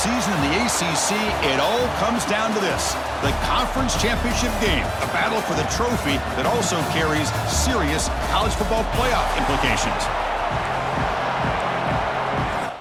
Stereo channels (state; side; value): identical; both; correlation 1.00